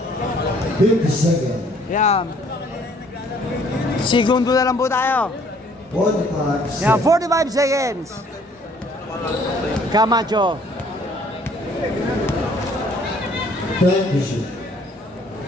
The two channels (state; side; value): normal; both; correlation 0.60